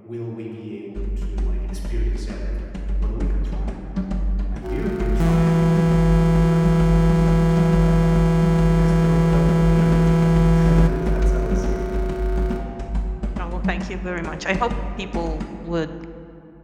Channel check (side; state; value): both; identical; correlation 1.00